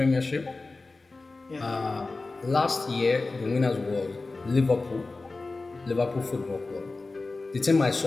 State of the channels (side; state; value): right; quieter; 3.5 dB